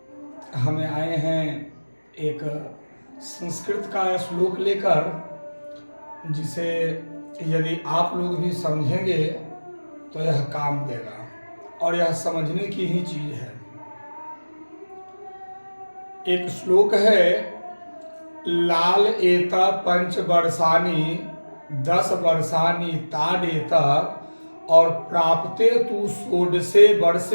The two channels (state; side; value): inverted; both; correlation -1.00